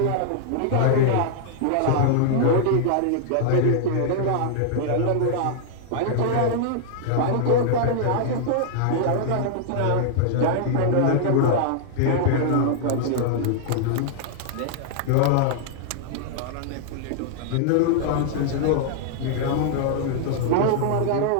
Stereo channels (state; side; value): different; both; correlation -0.01